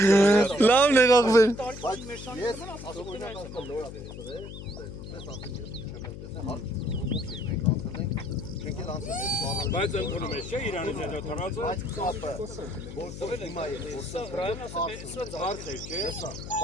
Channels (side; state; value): left; noise; hum, 11 dB below the sound